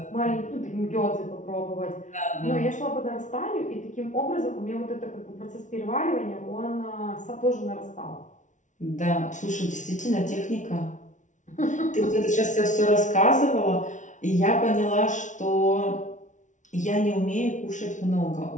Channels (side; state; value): right; late; 0.36 ms